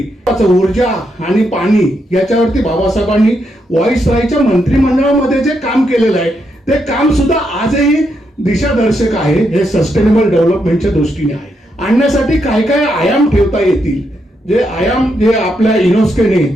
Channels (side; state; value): both; normal; correlation 0.80